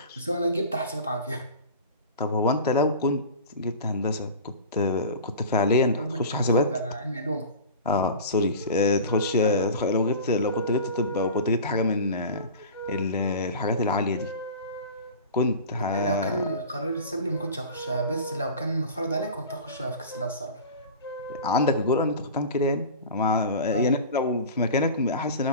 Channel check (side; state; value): both; inverted; correlation -0.35